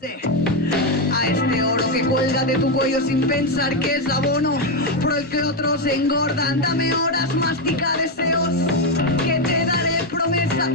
A este oro que cuelga de tu cuello sin pensar que es abono, pero el que otros engordan. Dame horas, mastica deseos que te daré promesas.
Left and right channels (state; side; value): normal; both; correlation 0.06